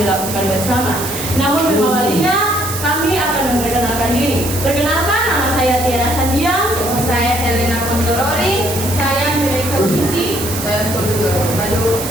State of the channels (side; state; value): right; noise; hiss, 7 dB below the sound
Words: lakukan bersama. Namun mengawalinya kami akan memperkenalkan diri. Perkenalkan, nama saya Tiara Sandiang. Saya Helena Kontorori. Saya Mereka Uci. Saya Lalu